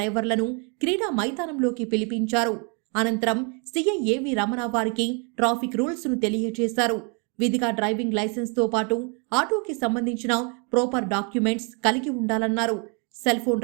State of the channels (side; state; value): left; quieter; 35.2 dB